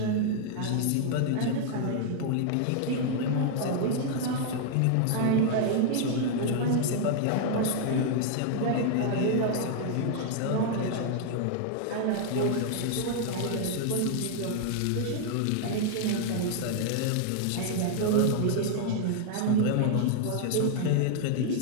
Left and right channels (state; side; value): different; both; correlation 0.00